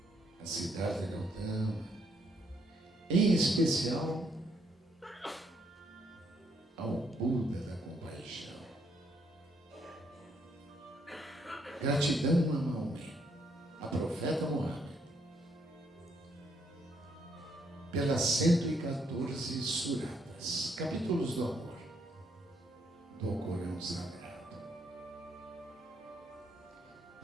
a Siddhartha Gautama, em especial ao Buda da compaixão. Gratidão a Maomé, a profeta Muhammad, pelas 114 suratas, capítulos do amor, do Corão Sagrado.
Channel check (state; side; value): normal; both; correlation 0.72